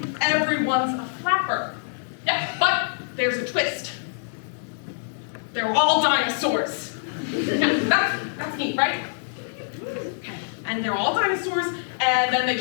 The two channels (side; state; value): right; silent; 62 dB below the other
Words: everyone's a flapper. Yeah, but there's a twist. They're all dinosaurs. Yeah, that's neat, right? Okay. And they're all dinosaurs, and then they